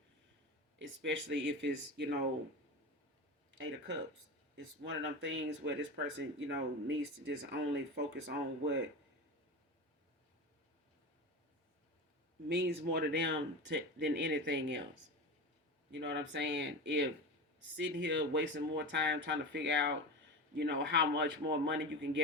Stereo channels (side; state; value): both; normal; correlation 0.26